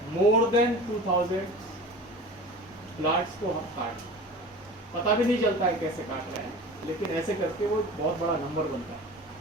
more than 2000 plants को हम काट, पता भी नहीं चलता है कैसे काट रहे हैं, लेकिन ऐसे करके वो बहुत बड़ा नंबर बनता है।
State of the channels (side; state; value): both; normal; correlation 0.37